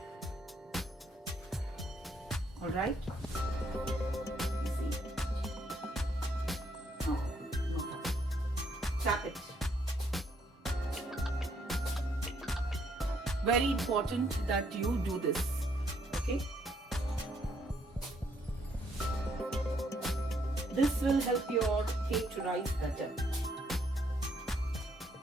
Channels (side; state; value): both; normal; correlation 0.71